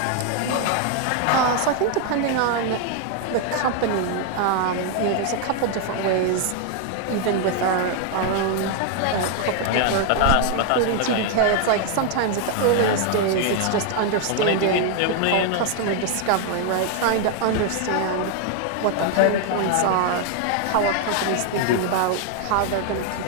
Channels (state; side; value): different; both; correlation 0.00